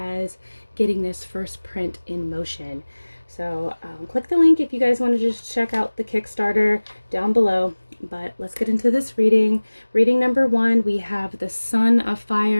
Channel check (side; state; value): both; inverted; correlation -1.00